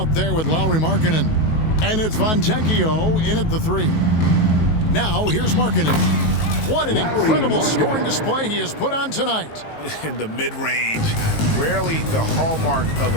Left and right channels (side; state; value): right; late; 19 ms